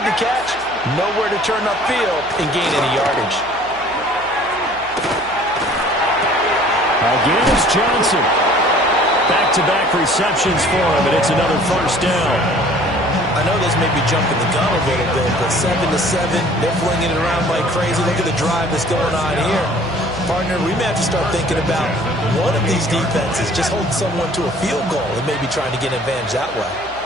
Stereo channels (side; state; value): right; noise; hum, 22 dB below the sound